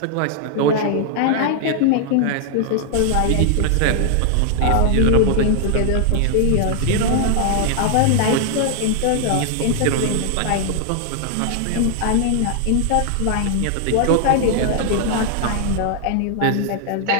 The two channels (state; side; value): different; both; correlation 0.00